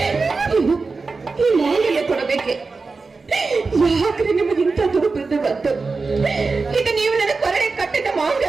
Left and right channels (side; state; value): left; quieter; 4.2 dB